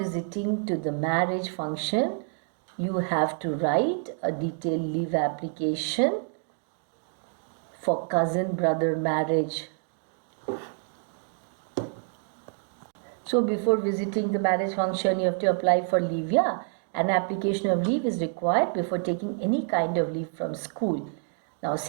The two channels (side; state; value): left; silent; 58 dB below the other